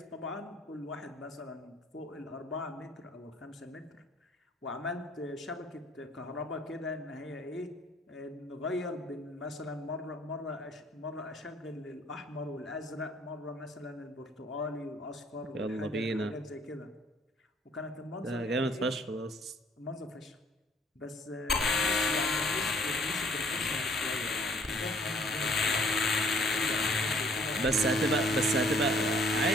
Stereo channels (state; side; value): normal; both; correlation 0.59